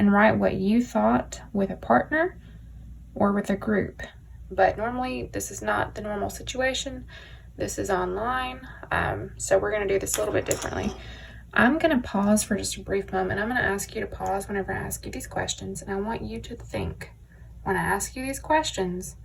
write what you thought with a partner or with a group. But normally this is not the normal situation. This is online, so we're going to do this a little bit differently. I'm going to pause for just a brief moment. I'm going to ask you to pause whenever I ask you these questions, and I want you to think, when I ask you these questions,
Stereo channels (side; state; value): both; identical; correlation 1.00